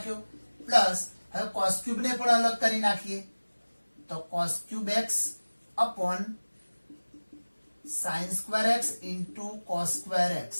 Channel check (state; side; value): inverted; both; correlation -1.00